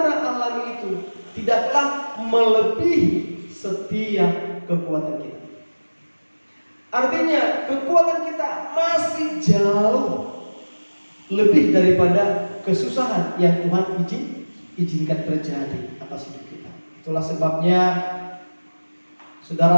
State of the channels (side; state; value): both; inverted; correlation -1.00